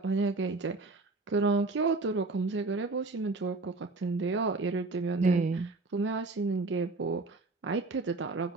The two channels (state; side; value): quieter; left; 3.4 dB